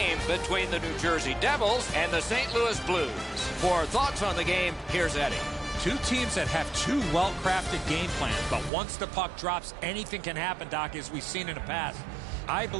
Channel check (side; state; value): left; drops out; at 8.7 s